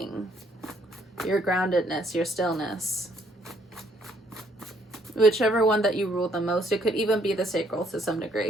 your groundedness, your stillness. Whichever one that you rule the most. It could even be the sacral to some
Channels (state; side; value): normal; both; correlation 0.67